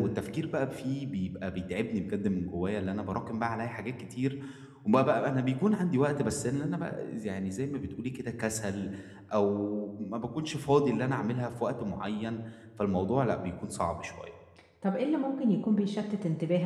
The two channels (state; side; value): identical; both; correlation 1.00